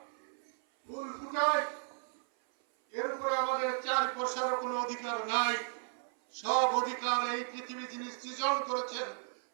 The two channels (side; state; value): left; silent; 55 dB below the other